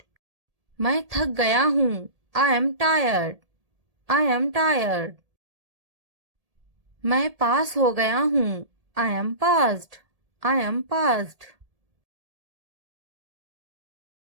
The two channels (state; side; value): late; left; 1.8 ms